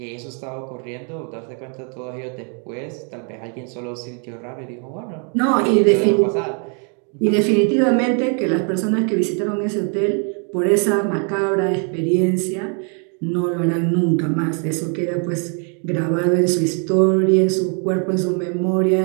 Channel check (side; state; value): left; quieter; 39.4 dB